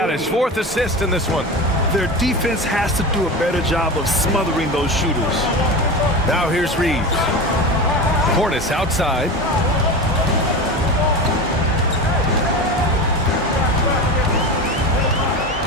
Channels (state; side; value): normal; both; correlation 0.26